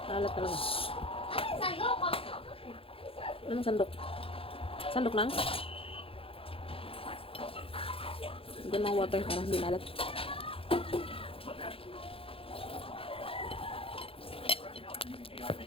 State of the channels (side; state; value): right; late; 0.27 ms